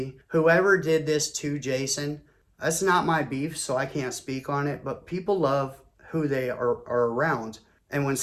Whoever did this to Jason, that's not my beef, so I can't speak on it, but people love who they are around. And when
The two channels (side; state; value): both; identical; correlation 1.00